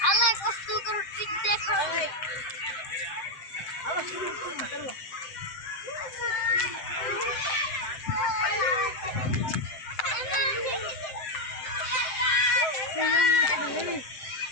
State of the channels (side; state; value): right; late; 7.7 ms